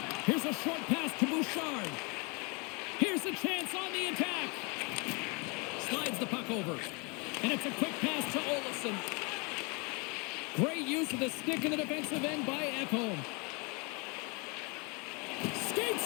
Here's a short pass to Bouchard. Here's a chance on the attack. Slides the puck over. And it's a quick pass to Olofsson. Great use of the stick in the defensive end by Ekholm. Skates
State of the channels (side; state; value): right; quieter; 31.2 dB